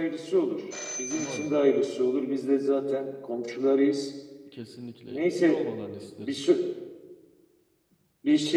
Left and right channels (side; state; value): both; identical; correlation 1.00